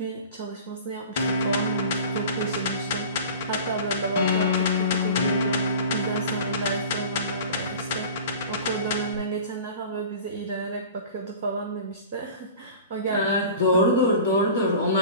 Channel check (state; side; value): inverted; both; correlation -0.39